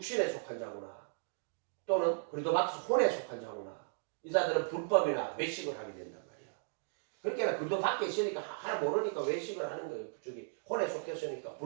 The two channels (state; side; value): silent; left; digital silence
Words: 속한 자구나. 또는 그래도 밖에서 혼에 속한 자구나. 이 사람들은 불법이나 외식을 하게 된단 말이야. 그러니까 그래도 밖에 있으니까 하나 모르니까 외식을 하는 거예요. 저기 혼에 속했으니까